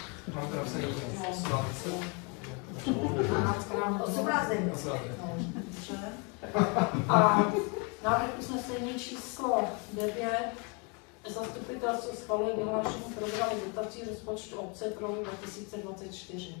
Mám to napsaný 18. A návrh usnesení číslo 9. Zastupitelstvo schvaluje vyhlášení programu dotací rozpočtu obce pro rok 2024.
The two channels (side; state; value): right; quieter; 33.2 dB